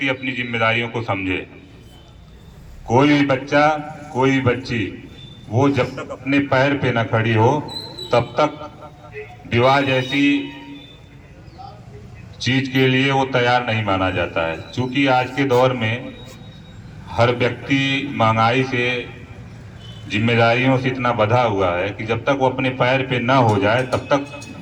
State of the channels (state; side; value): identical; both; correlation 1.00